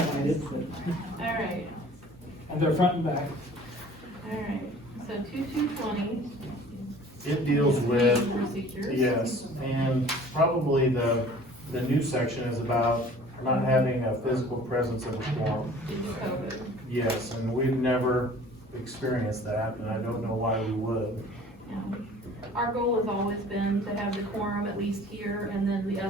but, Alright, and they're front and back. alright, so 2220. It deals with, Procedures. yes, and probably the new section is about not having a physical presence of a quorum. Due to COVID. Yes, and we've never experienced that, and I don't know why we would. Yeah. Our goal has always been to have the quorum at least here, and then the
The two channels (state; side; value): normal; both; correlation 0.48